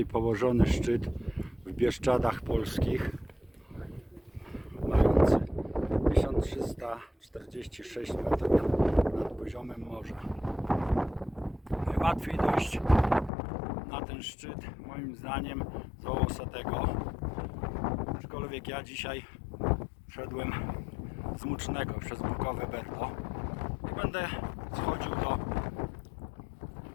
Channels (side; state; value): right; drops out; at 13.3 s